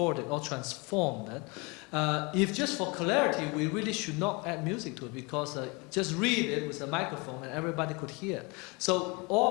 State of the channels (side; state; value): right; quieter; 28.5 dB